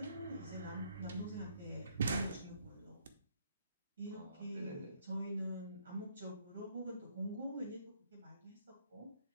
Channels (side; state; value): both; inverted; correlation -0.68